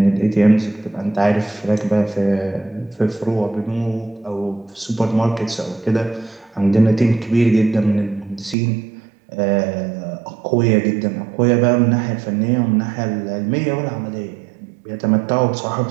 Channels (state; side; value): drops out; left; at 8.6 s